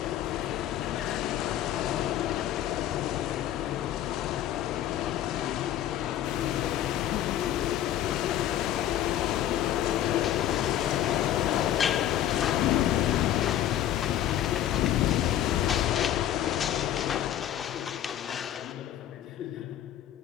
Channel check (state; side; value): quieter; right; 11.7 dB